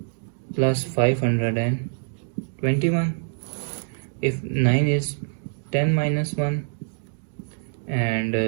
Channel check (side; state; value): left; silent; 62 dB below the other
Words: plus 521. If 9 is 10 minus 1 and